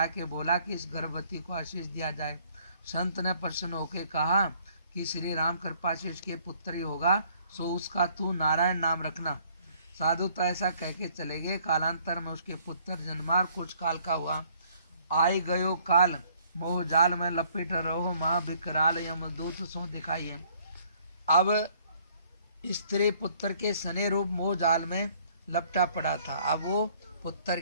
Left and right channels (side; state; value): both; inverted; correlation -0.62